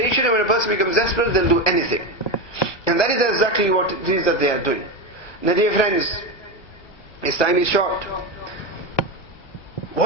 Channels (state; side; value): late; right; 1.1 ms